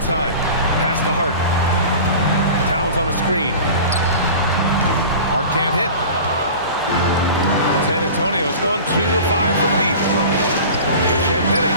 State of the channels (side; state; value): both; inverted; correlation -0.37